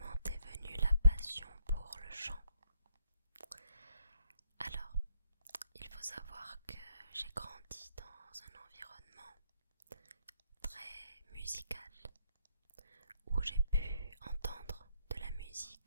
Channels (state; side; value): inverted; both; correlation -0.72